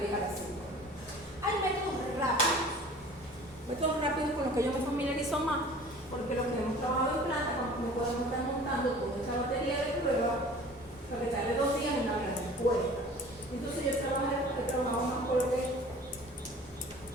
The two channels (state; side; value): normal; both; correlation 0.45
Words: a la 5. Hay métodos rápidos con los que yo me familiarizo más, porque los que hemos trabajado en planta, cuando me podemos estar montando toda esta batería de pruebas, lo que tarde 2 días en una gran respuesta. Entonces yo he trabajado más con lo